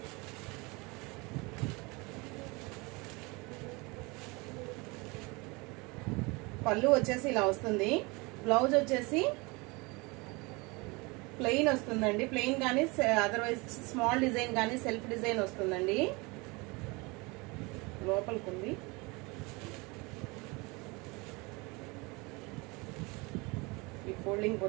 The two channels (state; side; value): quieter; left; 26.4 dB